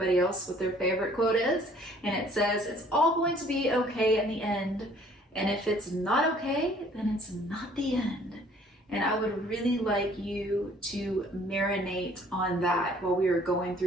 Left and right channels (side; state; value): both; normal; correlation 0.57